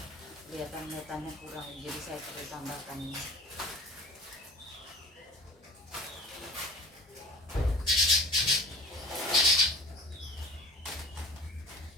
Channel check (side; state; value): both; normal; correlation 0.42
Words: Kelihatan metannya kurang, jadi saya perlu tambahkan ini.